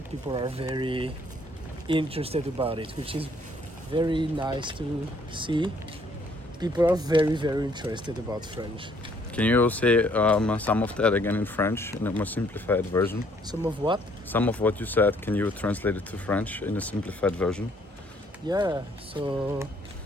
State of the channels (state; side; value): normal; both; correlation 0.64